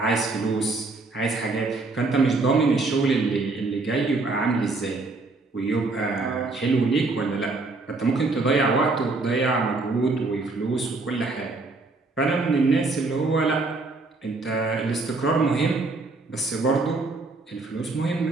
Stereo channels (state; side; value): quieter; left; 3.5 dB